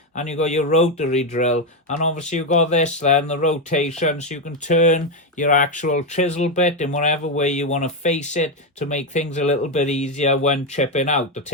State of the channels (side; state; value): both; normal; correlation 0.07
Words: And you got your rotary drill. And obviously you've got this then, the rotation, so you can turn your actual chisel bit in whatever way you want to face it to make things a little bit easier when chipping out, to